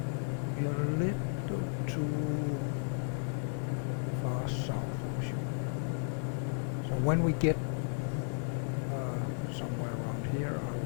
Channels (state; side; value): silent; right; digital silence